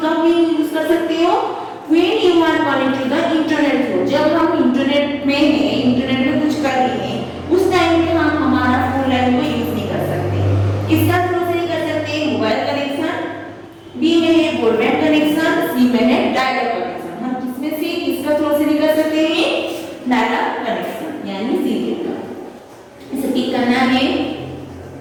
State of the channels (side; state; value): both; identical; correlation 1.00